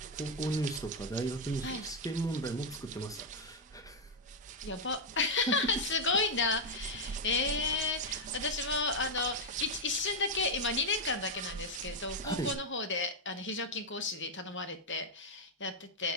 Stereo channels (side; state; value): both; normal; correlation 0.00